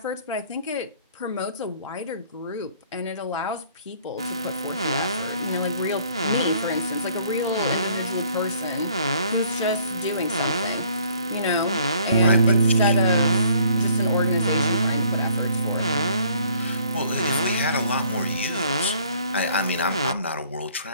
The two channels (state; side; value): inverted; both; correlation -0.60